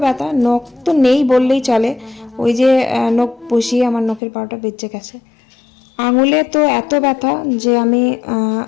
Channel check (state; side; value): drops out; right; at 4.2 s